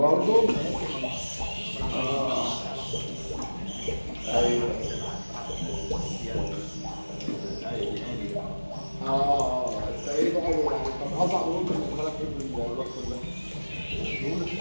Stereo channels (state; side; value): inverted; both; correlation -1.00